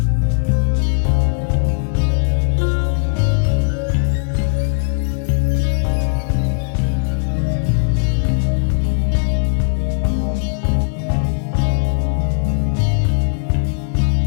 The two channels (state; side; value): silent; right; 67 dB below the other